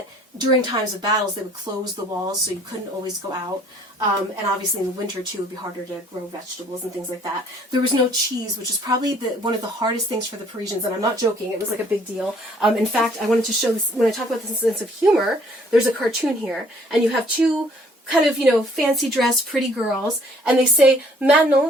during times of battles, they would close the walls, so you couldn't always go out. And obviously in the winter, too, it would be harder to grow vegetables and things like that. There was no cheese, which is probably one of the hardest things for the Parisians, and I'm not joking. It was a big deal. In fact, I wanted to show this, when I talk about this sense of humor, there's a cartoon here, and you have two kind of, fancy dressed, pretty girls, and they say,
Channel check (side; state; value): both; normal; correlation 0.59